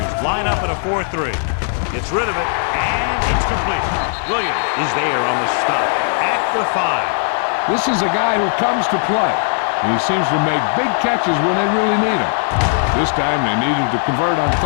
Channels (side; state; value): right; silent; 65 dB below the other